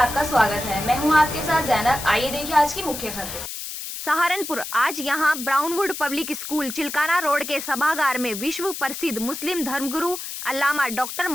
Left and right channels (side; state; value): left; noise; hiss, 8 dB below the sound